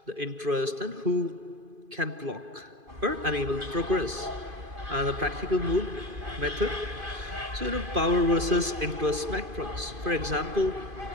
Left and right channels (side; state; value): left; late; 2.5 ms